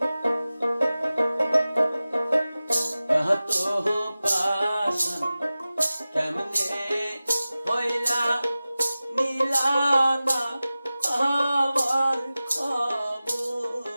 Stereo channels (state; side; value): inverted; both; correlation -0.96